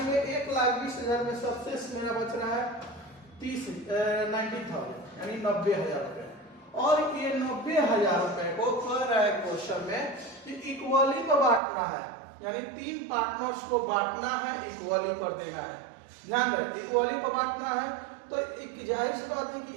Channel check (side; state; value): left; drops out; at 11.6 s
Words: 1,20,000 में सबसे मेरा बच रहा है 90,000 यानी 90,000 रुपए। और ये 90,000 रुपए को कह रहा है क्वेश्चन में कि इक्वली को बांटना है, यानी 3 पार्टनर्स को बांटना है, इक्वली कर देना है। ध्यान रहे इक्वली को बांटना है तो एक जाहिर सी बात है